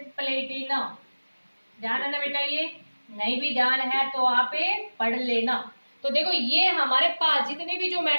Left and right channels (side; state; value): both; inverted; correlation -1.00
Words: platinum. ध्यान है ना बेटा, ये नहीं भी ध्यान है तो आप पढ़ लेना। तो देखो ये हमारे पास जितने भी जो